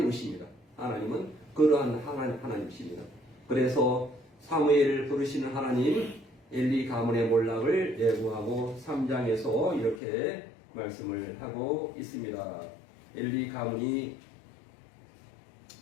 것입니다. 하나님은 그러한 하나님이십니다. 그래서 사무엘을 부르시는 하나님 엘리 가문의 몰락을 예고하고 3장에서 이렇게 말씀을 하고 있습니다. 엘리 가문이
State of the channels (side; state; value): right; drops out; at 10.0 s